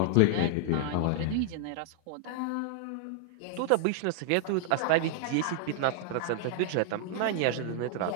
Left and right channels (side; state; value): both; different; correlation -0.01